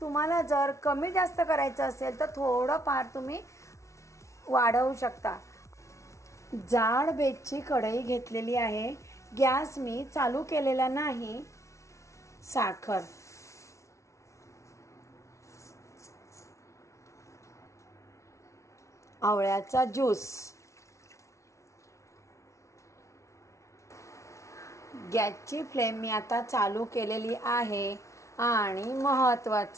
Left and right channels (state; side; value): late; right; 0.14 ms